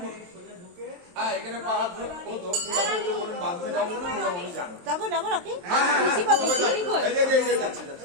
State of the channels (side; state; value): left; late; 23 ms